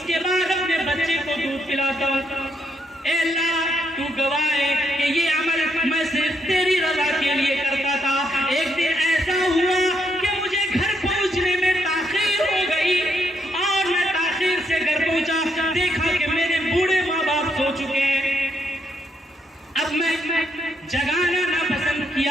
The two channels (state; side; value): normal; both; correlation 0.76